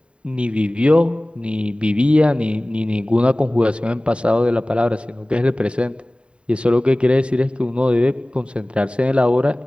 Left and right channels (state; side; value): late; left; 0.055 ms